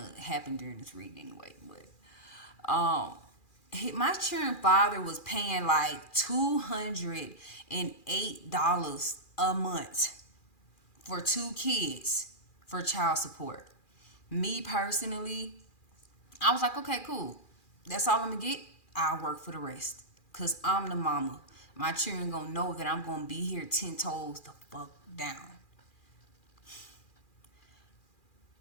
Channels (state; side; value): late; right; 2.4 ms